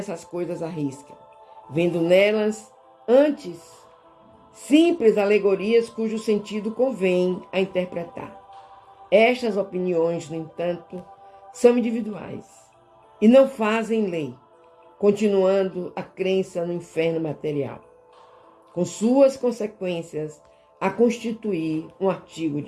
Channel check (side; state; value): both; identical; correlation 1.00